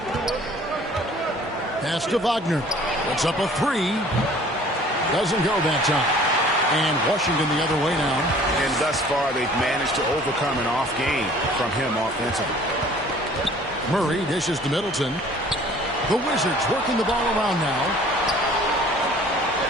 Pass to Wagner. Puts up a 3. Doesn't go that time. And Washington the other way now. And thus far, they've managed to overcome an off game from him offensively. Murray dishes to Middleton. The Wizards working the ball around now.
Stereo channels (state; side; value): normal; both; correlation 0.51